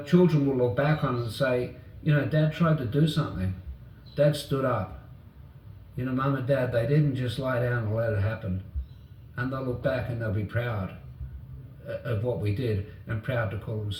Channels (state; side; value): identical; both; correlation 1.00